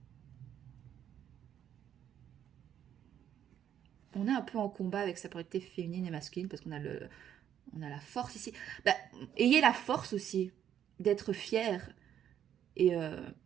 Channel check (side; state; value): left; quieter; 9.9 dB